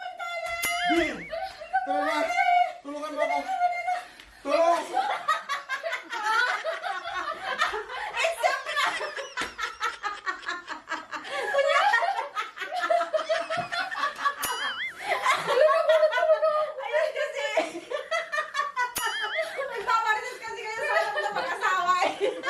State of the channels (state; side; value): identical; both; correlation 1.00